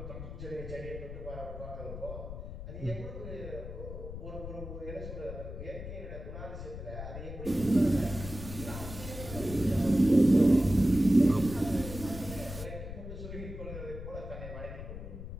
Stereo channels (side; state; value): left; noise; rumble, 9 dB below the sound